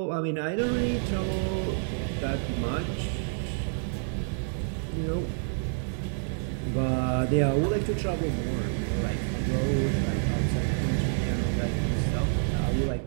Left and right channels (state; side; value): silent; left; 59 dB below the other